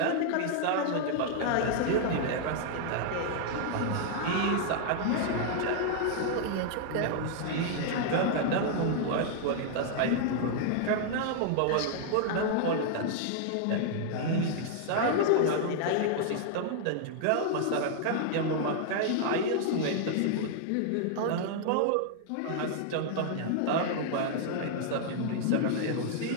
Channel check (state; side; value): different; both; correlation -0.01